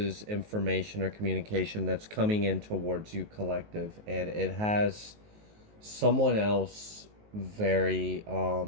information or communication that's coming in towards you, collective. And it has someone else very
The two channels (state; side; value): late; left; 19 ms